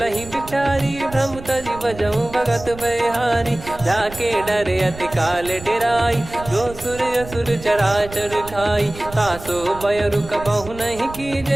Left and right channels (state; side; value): noise; right; rumble, 15 dB below the sound